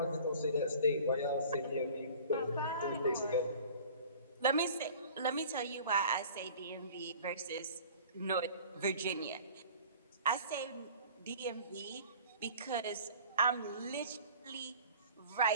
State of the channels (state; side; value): inverted; both; correlation -0.45